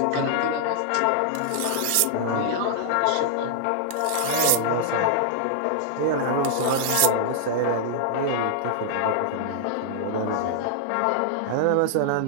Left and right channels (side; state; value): both; different; correlation -0.01